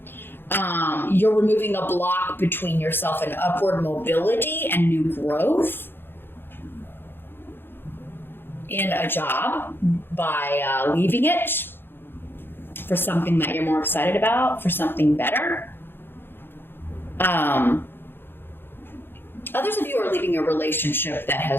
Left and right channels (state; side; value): late; right; 0.10 ms